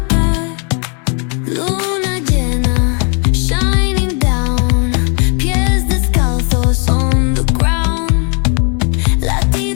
Luna llena, shining down. Pies descalzos on the ground.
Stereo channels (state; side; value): quieter; right; 37.5 dB